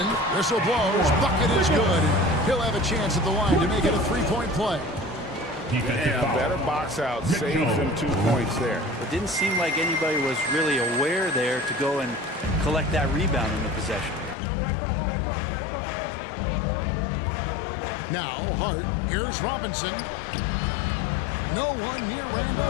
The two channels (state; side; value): drops out; right; at 14.4 s